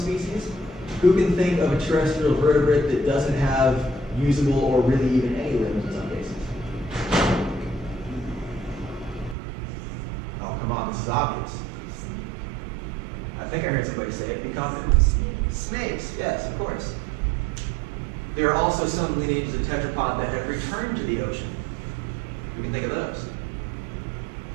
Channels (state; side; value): drops out; left; at 9.3 s